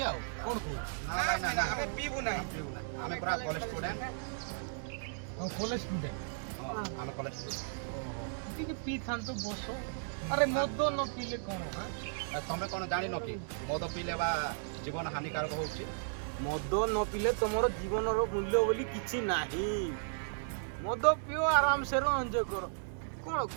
आउ कोन को ना हमें पीबू ना हमें पूरा कॉलेज स्टूडेंट हम कॉलेज स्टूडेंट हमें कॉलेज स्टूडेंट टिके पी खान तो बसो अरे मद न पीले कोन हां तमे कोन जानि न कि मद पीले बा जीवन हानिकारक होउची मद न पीले तुमर जीवन रो मूल्य बोली किछि नाही मद पियो आराम से रो एंजॉय करो कोन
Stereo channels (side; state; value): left; silent; digital silence